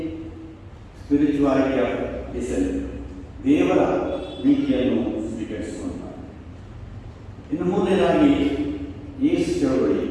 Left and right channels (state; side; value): identical; both; correlation 1.00